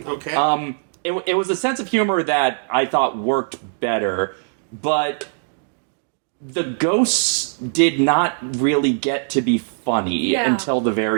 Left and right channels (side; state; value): left; silent; digital silence